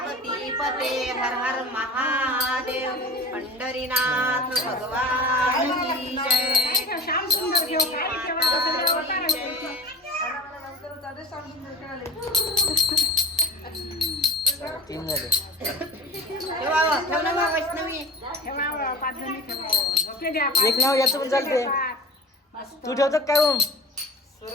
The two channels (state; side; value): normal; both; correlation 0.35